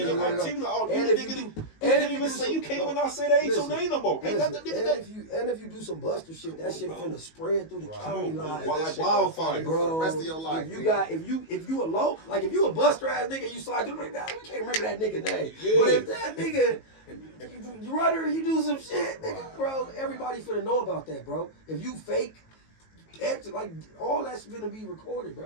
your they run activity, up. all And you if you nigga. You And can't if even do say some- you can't no, even not say that ain't your listen, name no more. Ain't Listen, that the nigga and that? if you do some buster shit, that shit Bro. finna spread through the Right. county Come on, line. bro. That Like shit gonna wildfire. follow you for Bro, the rest of your life. if you nigga. got if you a low, like if you a buster ass nigga, you slide through like that, we can't remember that nigga name. Yeah. But if that nigga you run her, you do some shit, nigga, Right, bro, right, everybody finna know about that, bro. If you fake, like all that's gonna be recorded,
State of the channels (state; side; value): late; right; 19 ms